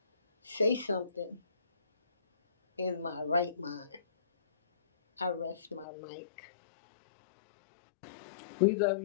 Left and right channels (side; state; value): right; drops out; at 5.9 s